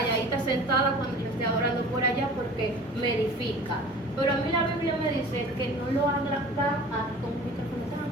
sentada cuando yo esté adorando por allá, porque me edifica. Pero a mí la Biblia me dice que no lo haga con un micrófono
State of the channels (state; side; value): normal; both; correlation 0.43